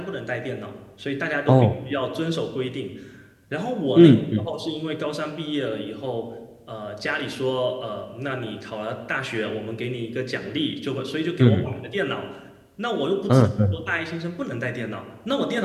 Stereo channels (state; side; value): identical; both; correlation 1.00